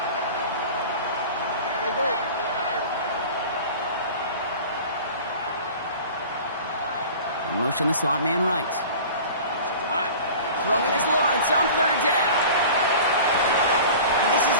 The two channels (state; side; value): inverted; both; correlation -0.40